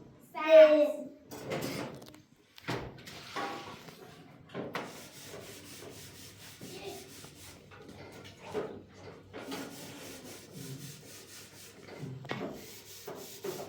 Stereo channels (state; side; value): identical; both; correlation 1.00